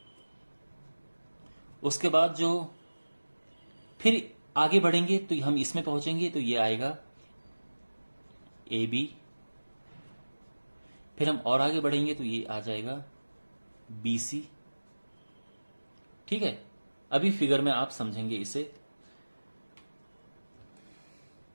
उसके बाद जो फिर आगे बढ़ेंगे तो हम इसमें पहुंचेंगे तो ये आएगा AB, फिर हम और आगे बढ़ेंगे तो ये आ जाएगा BC। ठीक है, अभी फिगर में आप समझेंगे इसे।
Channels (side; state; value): both; inverted; correlation -1.00